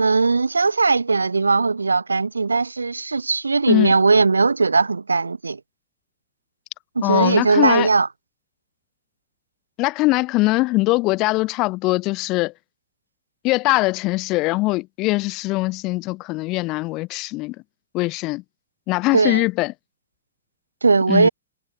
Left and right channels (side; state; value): both; inverted; correlation -0.48